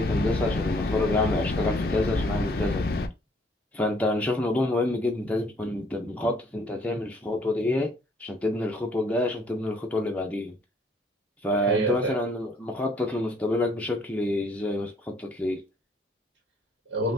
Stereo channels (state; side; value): normal; both; correlation 0.63